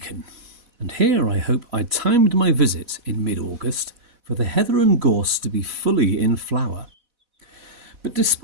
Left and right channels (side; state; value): left; late; 4.1 ms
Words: and here I hope I timed my visit in mid-August for the heather and gorse to be fully in flower. But